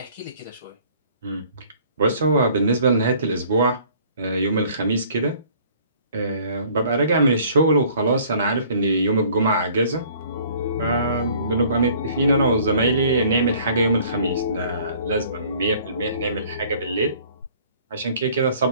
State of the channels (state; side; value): inverted; both; correlation -0.55